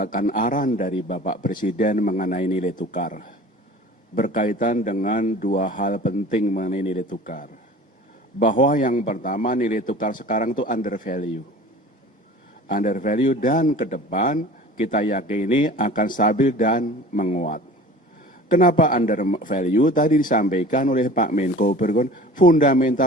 arahan dari Bapak Presiden mengenai nilai tukar. Berkaitan dengan dua hal penting mengenai nilai tukar. Bahwa yang pertama nilai tukar sekarang itu undervalue. Undervalue dan ke depan kita yakini akan stabil dan menguat. Kenapa under value? Tadi disampaikan oleh Pak Menko Bergon,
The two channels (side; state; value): both; normal; correlation 0.42